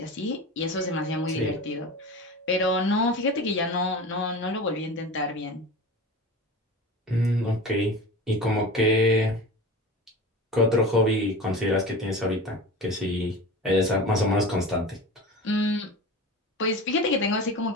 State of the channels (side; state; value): both; normal; correlation 0.32